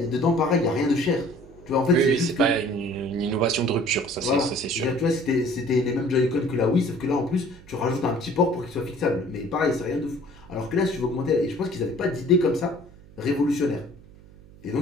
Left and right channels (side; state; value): right; noise; hum, 22 dB below the sound